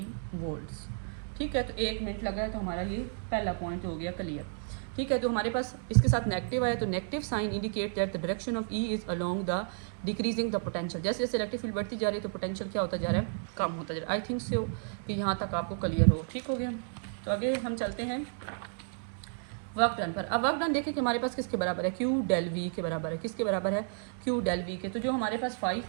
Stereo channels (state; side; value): silent; left; digital silence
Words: वोल्ट्स, ठीक है। तो 1 मिनट लगा है, तो हमारा ये पहला पॉइंट हो गया क्लियर, ठीक है। तो हमारे पास इसके साथ नेगेटिव आया, तो negative sign indicate that the direction of E is along the decreasing the potential. जैसे जैसे इलेक्ट्रिक फील्ड बढ़ती जा रही है तो पोटेंशियल क्या होता जा रहा है, कम होता जा रहा है। आई थिंक सो कि यहाँ तक आपको क्लियर हो, ठीक हो गया। तो आगे हम चलते हैं वर्क डन पर। अब वर्क डन देखें कि हमारे पास किसके बराबर है, क्यू डेल वी के बराबर है। किसके बराबर है, क्यू डेल वी के। तो जो हमारे पास